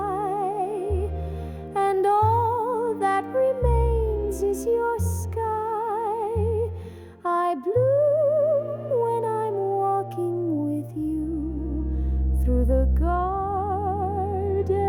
and all that remains is your sky. I bloom when I'm walking with you through the garden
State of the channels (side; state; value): both; identical; correlation 1.00